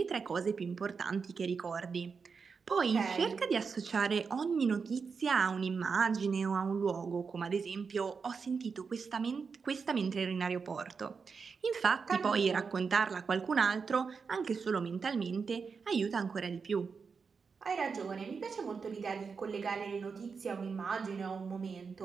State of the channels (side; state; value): left; quieter; 5.4 dB